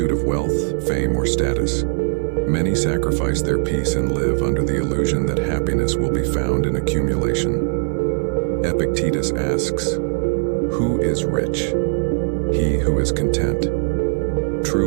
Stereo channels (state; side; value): silent; left; 66 dB below the other